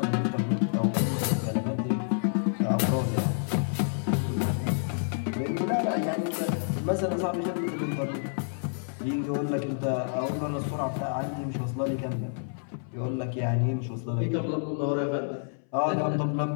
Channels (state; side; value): silent; right; 59 dB below the other